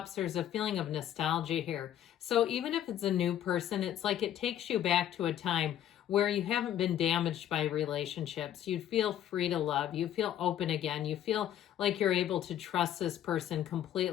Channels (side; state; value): right; quieter; 11.1 dB